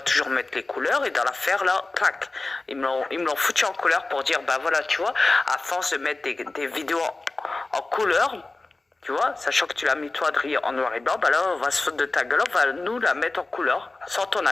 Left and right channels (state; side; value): quieter; right; 3.2 dB